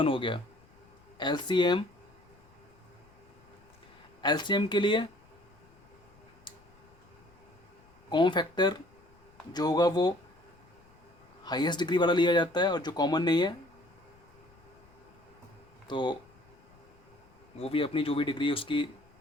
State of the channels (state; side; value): noise; left; rumble, 28 dB below the sound